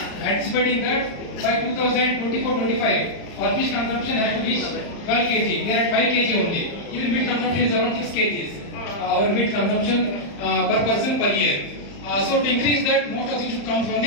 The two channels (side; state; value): right; late; 35 ms